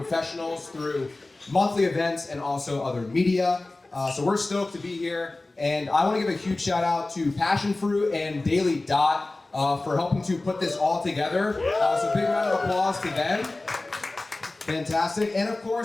through monthly events and also other media. So we're stoked to be here. And I want to give a huge shout out to Passionfruit and Daily Dot for helping to put this all together. So big round of applause to them. Fantastic. And of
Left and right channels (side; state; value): right; quieter; 3.0 dB